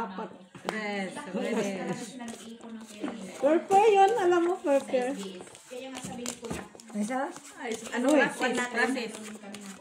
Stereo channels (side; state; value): both; identical; correlation 1.00